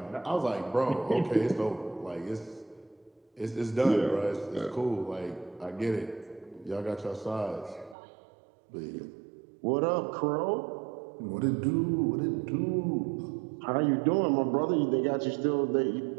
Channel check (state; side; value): drops out; left; at 8.0 s